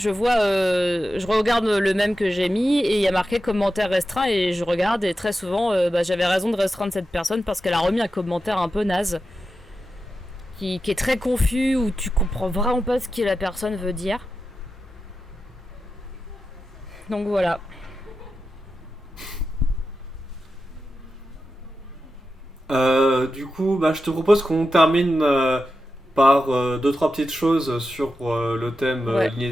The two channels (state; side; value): normal; both; correlation 0.91